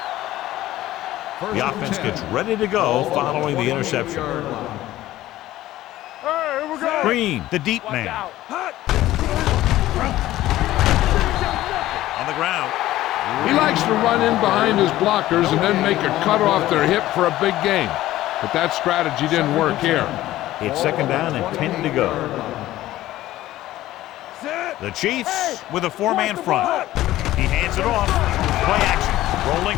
The offense gets ready to go following the interception. Hey, here we go. Green, the deep man. On the ground. He likes to run in behind his blockers and then make a cut off their hip for a big gain. But that strategy didn't work here. It's second down and 10 to go. The Chiefs with a four-man front. He hands it off. Play action. Rolling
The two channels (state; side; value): quieter; right; 15.2 dB